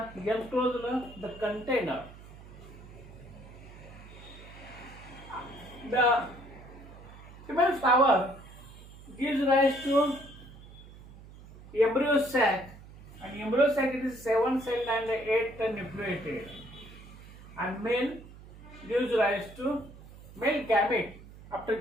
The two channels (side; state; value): right; noise; hum, 18 dB below the sound